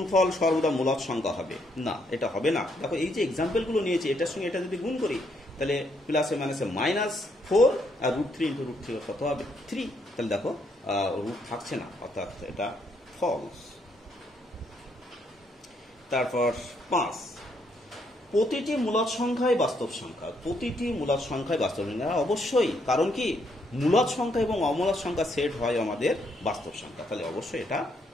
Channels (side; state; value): both; normal; correlation 0.74